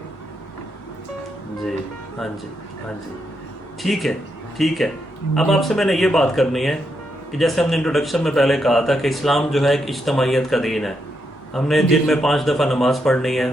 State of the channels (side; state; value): both; normal; correlation 0.81